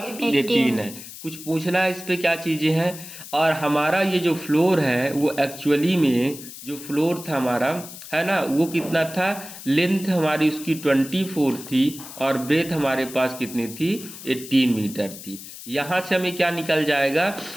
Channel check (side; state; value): left; noise; hiss, 14 dB below the sound